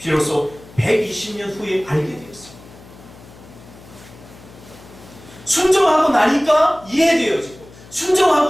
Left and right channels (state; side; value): noise; left; hum, 21 dB below the sound